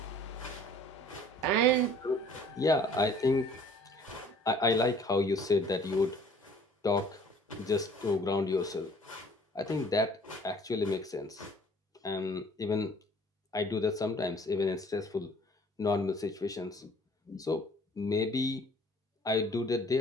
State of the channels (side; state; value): both; normal; correlation 0.54